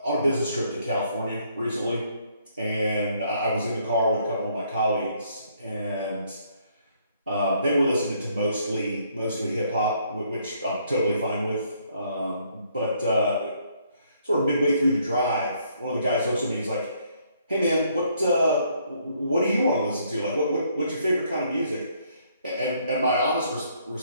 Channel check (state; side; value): inverted; both; correlation -0.68